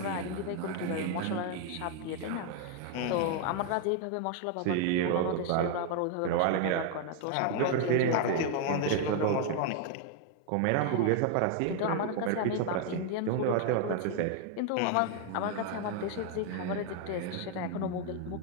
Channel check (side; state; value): both; different; correlation 0.00